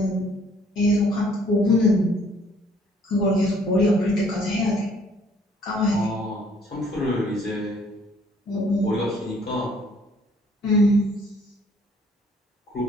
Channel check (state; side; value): normal; both; correlation 0.61